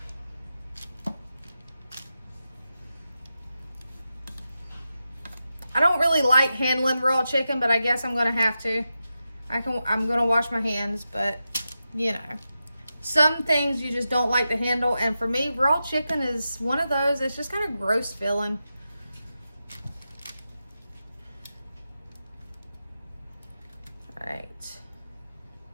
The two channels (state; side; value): inverted; both; correlation -0.90